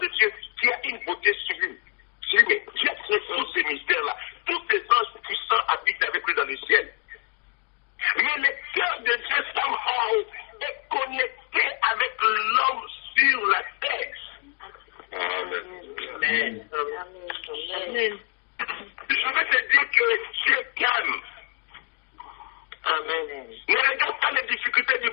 Dieu, qui a une beauté sublime. Mais Dieu a créé tous ces mystères-là. Tous ces anges puissants habitent avec lui dans le ciel. Mais le cœur de Dieu, somehow, est connecté avec l'homme sur la terre. Amen. Amen. Je veux te dire que Dieu t'aime. Amen. Ne regarde pas les difficultés du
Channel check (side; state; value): right; quieter; 37.6 dB